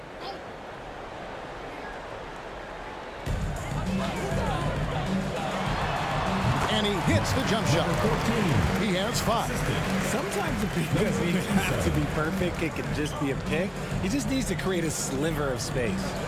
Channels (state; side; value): identical; both; correlation 1.00